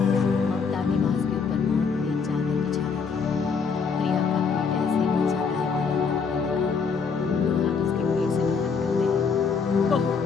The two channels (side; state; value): right; quieter; 5.5 dB